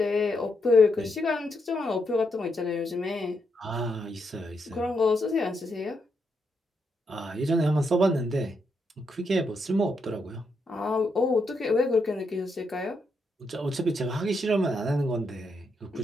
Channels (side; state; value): both; normal; correlation 0.80